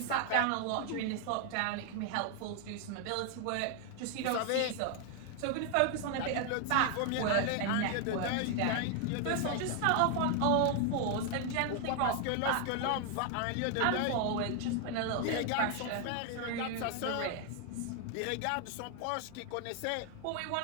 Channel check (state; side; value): different; both; correlation 0.00